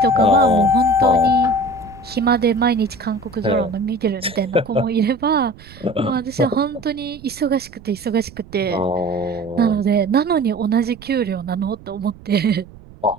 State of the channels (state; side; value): noise; right; rumble, 21 dB below the sound